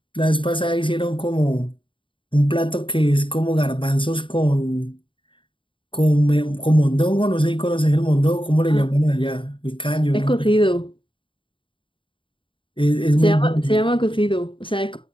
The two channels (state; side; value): late; right; 0.25 ms